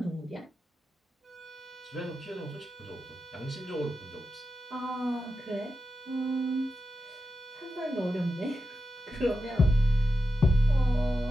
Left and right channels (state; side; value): normal; both; correlation 0.89